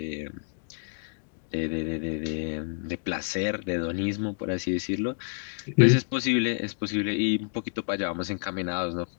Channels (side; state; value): right; silent; 59 dB below the other